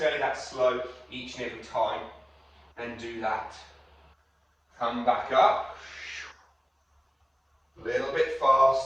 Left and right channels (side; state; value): both; identical; correlation 1.00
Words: that slow each and every time, then do that. Come back up. A little bit